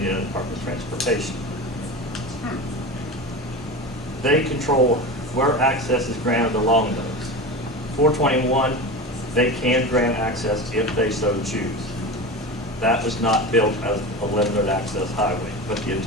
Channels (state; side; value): normal; both; correlation 0.27